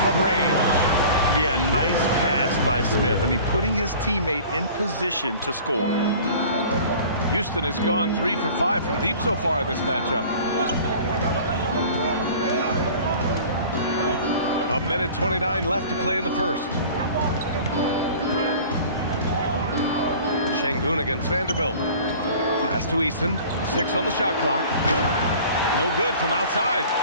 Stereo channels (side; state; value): both; inverted; correlation -0.44